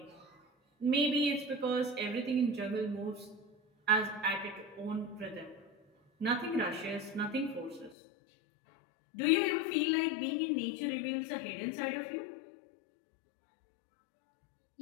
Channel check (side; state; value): right; drops out; at 8.0 s